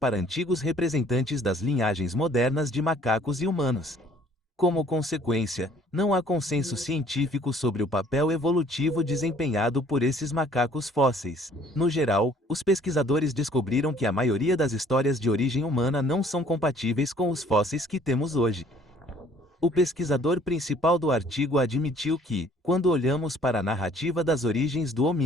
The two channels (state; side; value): normal; both; correlation 0.57